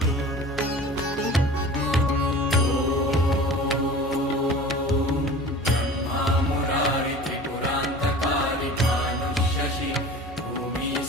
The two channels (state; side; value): normal; both; correlation 0.40